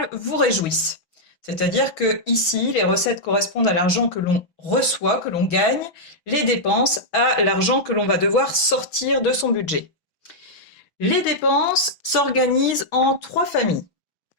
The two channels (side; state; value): right; late; 6.2 ms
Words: vous réjouissent. C'est-à-dire que ici, les recettes correspondent à l'argent que l'on reçoit, que l'on gagne, les dépenses à l'argent que l'on va devoir sortir de son budget. Les dépenses s'organisent en trois familles.